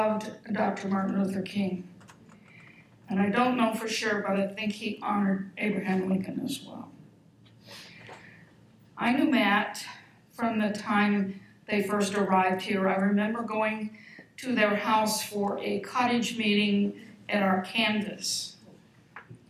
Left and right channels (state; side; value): identical; both; correlation 1.00